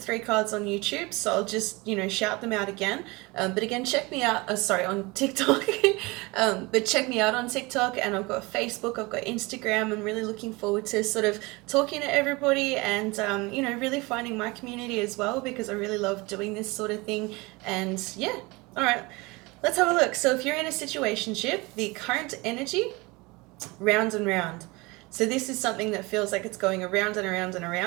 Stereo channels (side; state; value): left; quieter; 24.4 dB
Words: 3 cards on YouTube, so I'll just, shout them out again. But again, check me out, on TikTok. But check me out on TikTok, and I've got Facebook, I've got Instagram. I'm really looking forward to sort of talking to everybody and, really finding my community as well, because I really love doing this sort of thing. And yeah, all right, let's have a look. So if you're in a situationship, the current energy, round and round. So this is something that feels like it's going around and around and